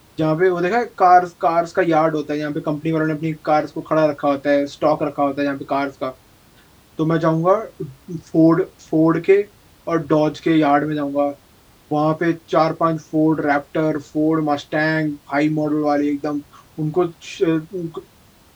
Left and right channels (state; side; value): identical; both; correlation 1.00